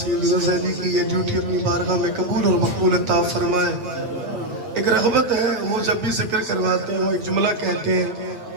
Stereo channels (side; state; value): left; late; 8.7 ms